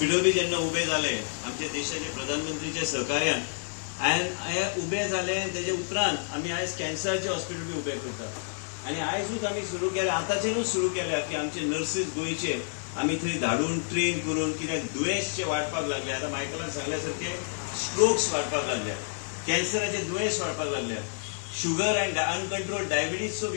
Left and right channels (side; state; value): right; silent; digital silence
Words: बी जेन्ना उबे जाले आमच्या देशाचे प्रधानमंत्रीच्या सहकार्यान, हे उबे जाले तेजे उपरांत आमी आयज कॅन्सराचे हॉस्पिटल बी उबे करता. आनी आयजूच आमी सुरू केल्या, आतांच्यानूच सुरू केल्या की आमचे नर्सीस गोंयचे आमी थंय धाडून ट्रेन करून, कित्याक दुयेंस वाडपाक लागले. आतां मायकलान सांगल्या सारखे स्ट्रोक्स वाडपाक लागल्या, कॅन्सराचे दुयेंस वाडपाक लागल्या, शुगर अँड अनकंट्रोल डायबिटीजचो